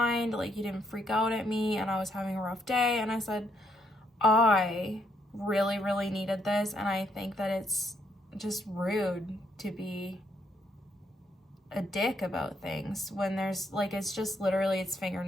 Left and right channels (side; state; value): both; normal; correlation 0.72